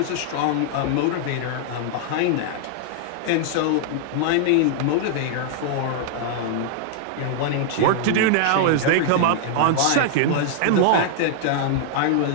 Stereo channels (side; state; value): both; different; correlation -0.01